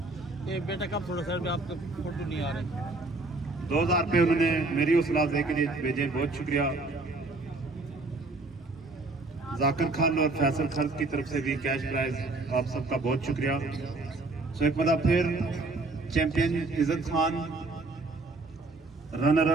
बेटा कब थोड़ा सर आपके फोटो नहीं आ रहे। 2000 रुपये उन्होंने मेरी हौसला अफजाई के लिए भेजे, बहुत शुक्रिया। जाकिर खान और फैसल खर्च की तरफ से भी कैश प्राइज, आप सबका बहुत शुक्रिया। सो एक मतलब फिर champion Izzat Khan, runner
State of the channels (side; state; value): left; quieter; 3.3 dB